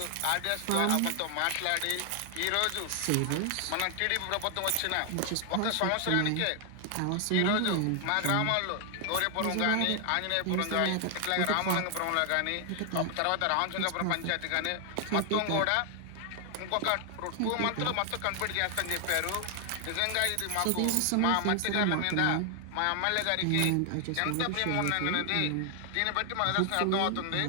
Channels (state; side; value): different; both; correlation 0.00